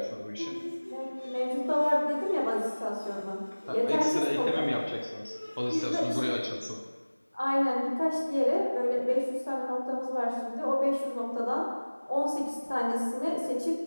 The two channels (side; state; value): both; inverted; correlation -1.00